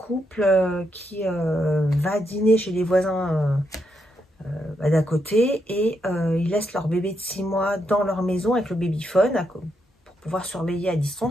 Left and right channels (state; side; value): normal; both; correlation 0.80